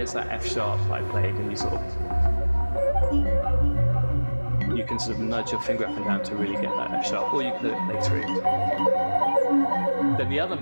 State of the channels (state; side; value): inverted; both; correlation -1.00